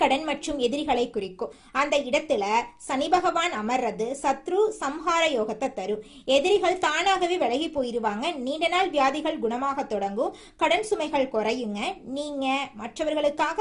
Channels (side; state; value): both; identical; correlation 1.00